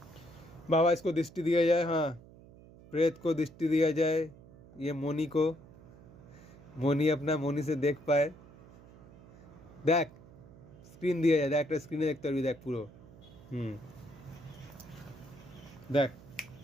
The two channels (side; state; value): right; noise; hum, 21 dB below the sound